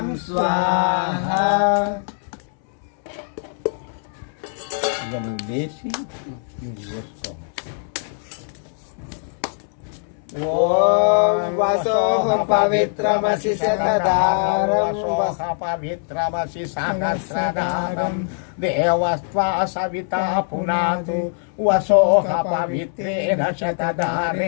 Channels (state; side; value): silent; right; 64 dB below the other